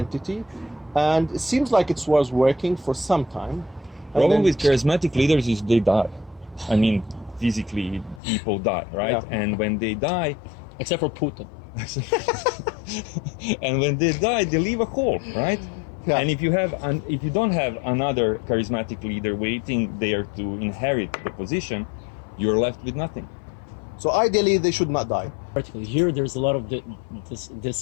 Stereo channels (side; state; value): right; drops out; at 8.2 s